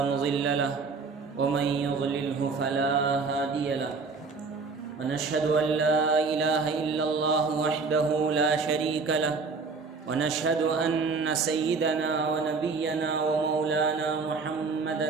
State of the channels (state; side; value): quieter; left; 4.5 dB